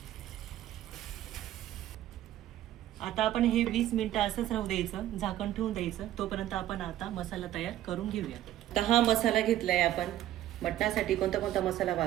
आता आपण हे 20 मिनिटं असंच राहू द्यायचं, झाकण ठेवून द्यायचं. तोपर्यंत आपण आता मसाला तयार करून घेऊया. तर हा मसाला घेतलाय आपण. मटणासाठी कोणता कोणता मसाला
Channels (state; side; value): quieter; left; 13.1 dB